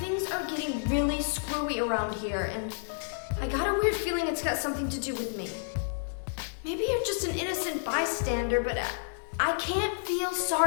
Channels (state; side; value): silent; right; digital silence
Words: are getting really screwy around here, and I got a weird feeling it's got something to do with me. Maybe you're just an innocent bystander, but I can't feel